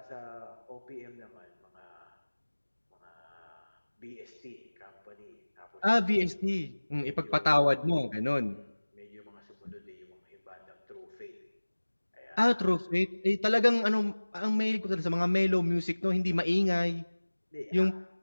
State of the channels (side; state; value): both; inverted; correlation -1.00